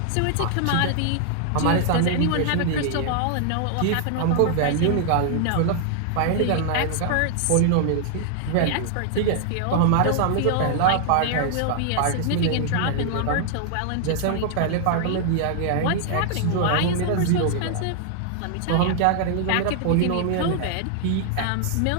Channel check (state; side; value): different; both; correlation 0.00